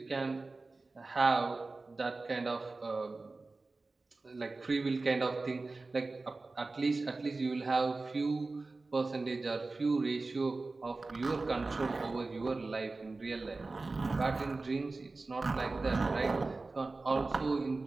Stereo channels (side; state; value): left; quieter; 3.5 dB